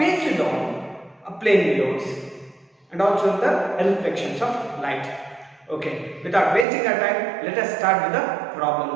on plane mirrors and also the reflections of light. Okay, without wasting our time, let us start with the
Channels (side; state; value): left; drops out; at 6.7 s